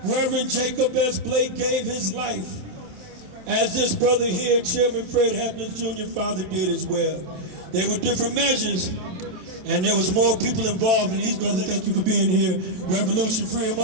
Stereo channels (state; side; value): late; left; 27 ms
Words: Reverend Jacob S. Blake gave his life, as this brother here, Chairman Fred Hampton Jr., father did as well. There were different measures, and there was more people involved, and these brothers, thank you for being here. Revolution, free them